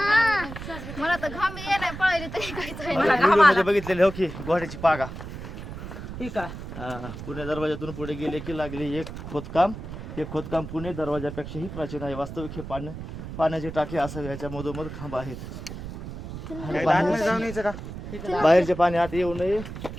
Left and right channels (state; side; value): noise; right; rumble, 10 dB below the sound